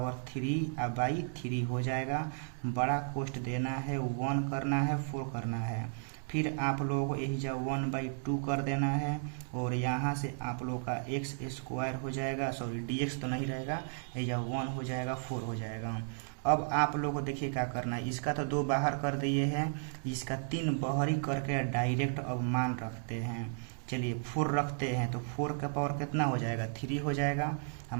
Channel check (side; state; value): left; silent; digital silence